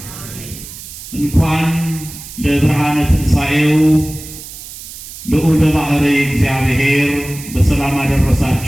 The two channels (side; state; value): right; noise; hiss, 14 dB below the sound